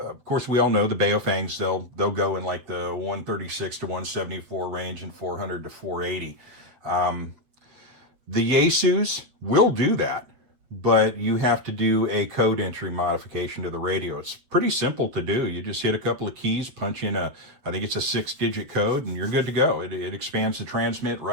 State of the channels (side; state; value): left; late; 8.1 ms